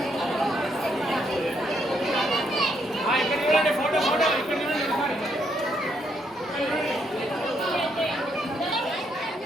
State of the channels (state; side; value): normal; both; correlation 0.74